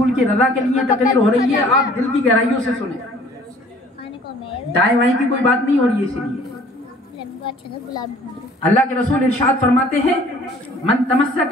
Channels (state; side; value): normal; both; correlation 0.53